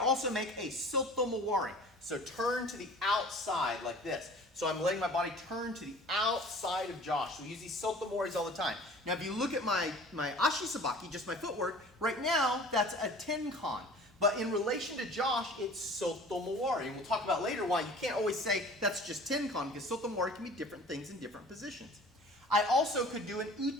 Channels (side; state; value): both; normal; correlation 0.45